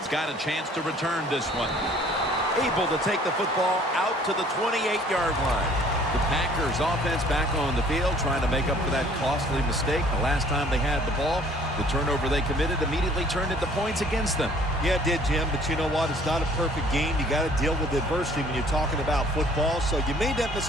got a chance to return this one. Able to take the football out to the 28-yard line. The Packers offense back on the field trying to make up for that costly mistake. The last time they had the ball, the turnover they committed immediately turned into points against them. Yeah, it did, Jim, but you know what? It's not a perfect game. You got to deal with adversity when you're talking about football. So you made that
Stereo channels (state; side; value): normal; both; correlation 0.56